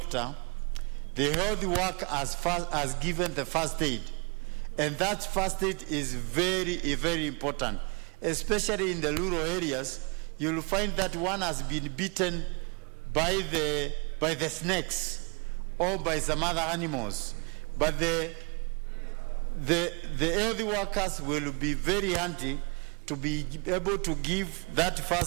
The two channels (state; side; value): quieter; left; 32.3 dB